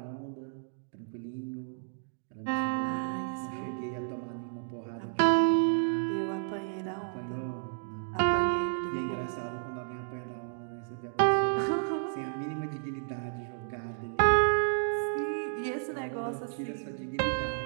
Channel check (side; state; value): left; silent; digital silence